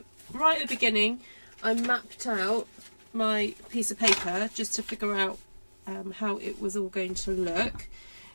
right at the beginning, I mapped out my piece of paper just to figure out how it was all going to look.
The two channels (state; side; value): inverted; both; correlation -1.00